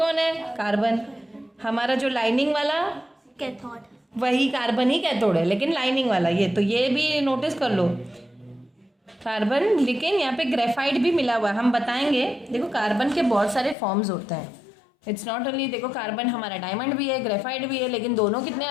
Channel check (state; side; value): drops out; right; at 13.8 s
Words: है, कार्बन। हमारा जो लाइनिंग वाला कैथोड, वही कार्बन ही कैथोड है, लेकिन लाइनिंग वाला ये भी नोटिस कर लो, कार्बन। लेकिन यहाँ पे ग्रेफाइट भी मिला हुआ है, हम बताएंगे। देखो कार्बन के बहुत सारे फॉर्म्स होते हैं, इट्स नॉट ओनली, देखो कार्बन हमारा डायमंड भी है, ग्रेफाइट भी है, लेकिन दोनों कितने